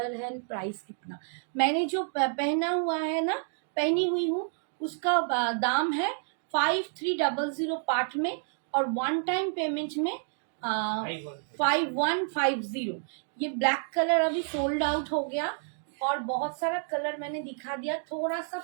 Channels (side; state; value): left; silent; 56 dB below the other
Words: है, प्राइस कितना? मैंने जो पहना हुआ है ना, पहनी हुई हूँ, उसका दाम है 5300 पार्ट में, और वन टाइम पेमेंट में 5150। ये ब्लैक कलर अभी सोल्ड आउट हो गया, और बहुत सारा कलर मैंने दिखा दिया, थोड़ा सा